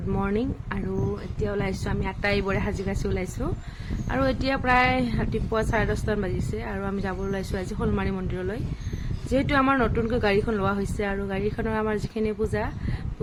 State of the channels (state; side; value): identical; both; correlation 1.00